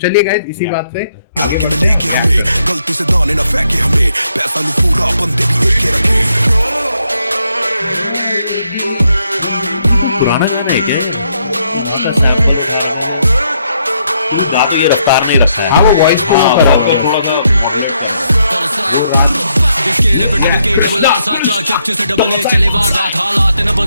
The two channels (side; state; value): both; inverted; correlation -0.76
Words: गाइस, इसी बात से गलती से दाने ना फेंके हमें, पैसा नहीं पूरा बंदे भी एक रखे। पुराना गाना है क्या? गा तो ये रफ्तार नहीं रखा है। हाँ, वो वॉइस को करा हुआ है। इसके पे डबल के डबल आर साथ चार चपचे से डबल ए चले वारदात हालात न